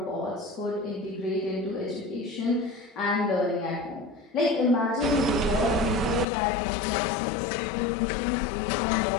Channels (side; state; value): right; drops out; at 6.2 s